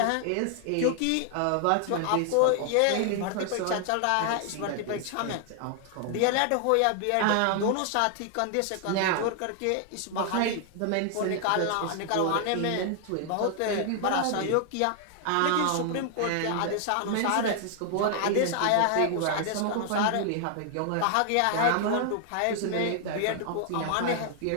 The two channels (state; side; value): different; both; correlation 0.00